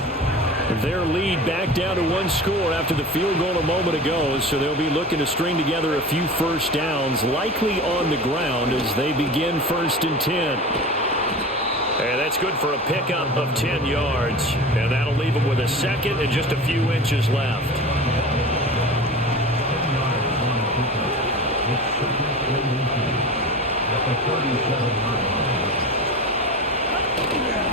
Their lead back down to 1 score after the field goal a moment ago, so they'll be looking to string together a few first downs, likely on the ground as they begin 1st and 10. And that's good for a pickup of 10 yards. And that'll leave them with a second and just a few inches left.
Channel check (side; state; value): both; normal; correlation 0.33